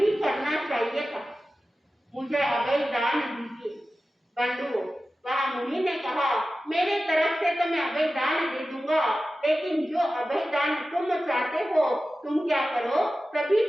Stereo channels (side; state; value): both; normal; correlation 0.94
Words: करना चाहिए था, मुझे अभय दान दीजिए। बंधुओं, वहाँ मुनि ने कहा, मेरे तरफ से तो मैं अभय दान दे दूंगा, लेकिन जो अभय दान तुम चाहते हो तुम क्या करो, सभी